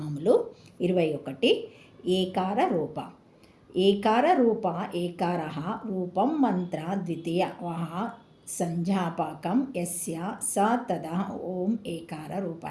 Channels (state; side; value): identical; both; correlation 1.00